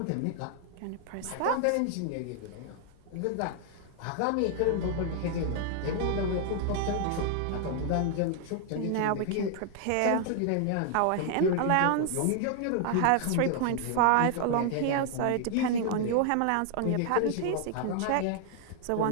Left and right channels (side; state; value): both; different; correlation 0.00